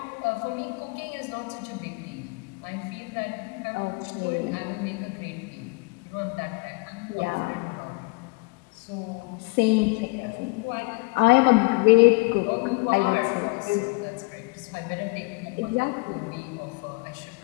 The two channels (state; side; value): quieter; right; 28.0 dB